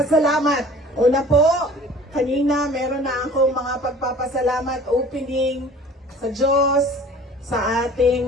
Una po, kanina meron na akong mga pagpapasalamat opening sa Diyos, sa ating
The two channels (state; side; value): normal; both; correlation 0.47